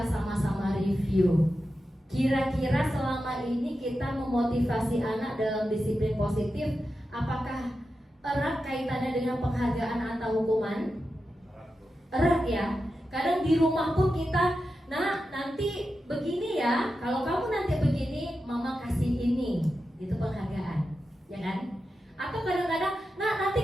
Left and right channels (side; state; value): both; normal; correlation 0.90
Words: sama-sama review. Kira-kira selama ini kita memotivasi anak dalam disiplin positif, apakah erat kaitannya dengan penghargaan atau hukuman? Erat ya. Kadang di rumah pun kita, nah nanti begini ya, kalau kamu nanti begini, mama kasih ini, itu penghargaan, ya kan? Atau kadang-kadang, nah